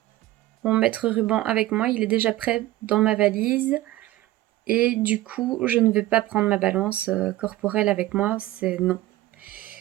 mon mètre ruban avec moi. Il est déjà prêt dans ma valise. Et du coup, je ne vais pas prendre ma balance corporelle avec moi. C'est non.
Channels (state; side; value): quieter; left; 16.3 dB